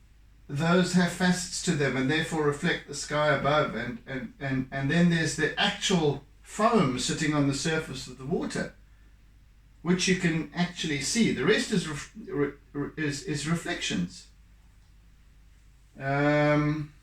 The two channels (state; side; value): identical; both; correlation 1.00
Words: Those have facets to them and therefore reflect the sky above, and then there's the actual foam sitting on the surface of the water, which you can actually see. The rest is reflections,